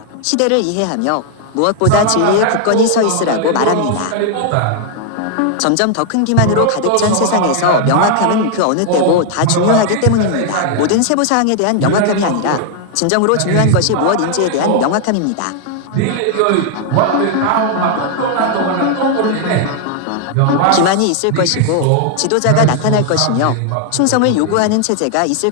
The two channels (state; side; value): different; both; correlation 0.00